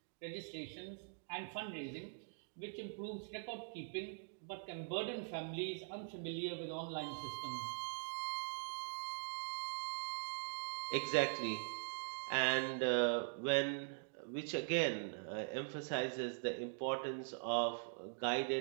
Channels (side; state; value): left; silent; digital silence